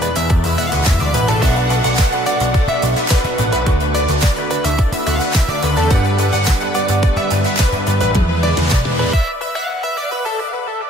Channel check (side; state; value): both; normal; correlation 0.63